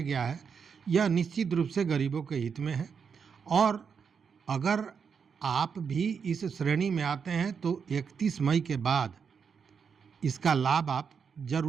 गया है, यह निश्चित रूप से गरीबों के हित में है। और अगर आप भी इस श्रेणी में आते हैं तो 31 मई के बाद इसका लाभ आप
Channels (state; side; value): quieter; left; 6.4 dB